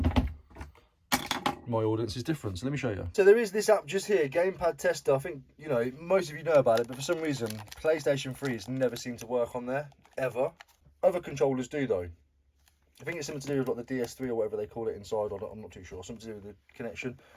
my audience is different, so let me show you. So there is this app just here, Gamepad Tester. I think, you know, most of you know about it, but for some reason, PlayStation 3's never seemed to work on there, ever. Other controllers do, though. I think it's something to do with like the DS3 or whatever they call it inside, or I'm not too sure. Something to do with the connection.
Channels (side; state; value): both; identical; correlation 1.00